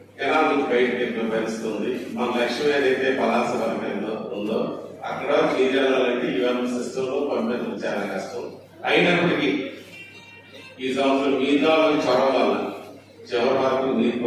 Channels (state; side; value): identical; both; correlation 1.00